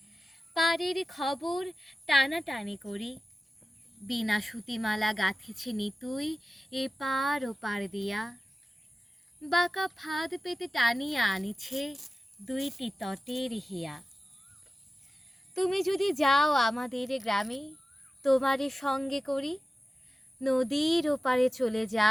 পাড়ের খবর টানাটানি করি, বিনা সুতিমালা গাঁথেছে নিতুই এপার ওপার দিয়া, বাঁকা ফাঁদ পেতে টানিয়া আনিছে দুইটি তটের হিয়া। তুমি যদি যাও আমাদের গ্রামে তোমারে সঙ্গে করি, নদীর ওপারে চলে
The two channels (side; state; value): both; normal; correlation 0.95